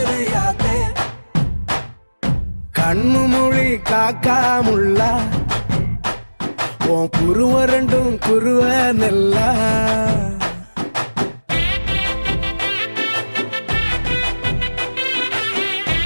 கண்ணு மொழி காக்காமுள்ள உன் குருவ ரெண்டும் குருவ நெல்லா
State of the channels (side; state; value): both; inverted; correlation -1.00